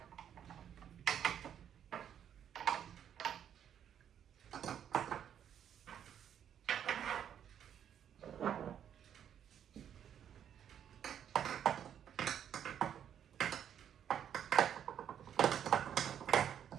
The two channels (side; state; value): left; quieter; 9.3 dB